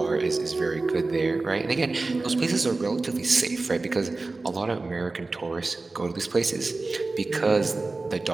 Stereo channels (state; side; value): quieter; left; 3.5 dB